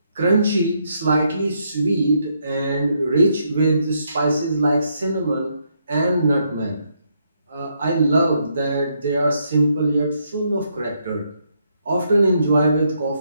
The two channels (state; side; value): inverted; both; correlation -0.76